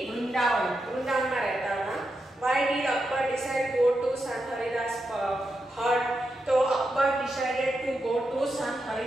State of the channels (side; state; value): both; normal; correlation 0.86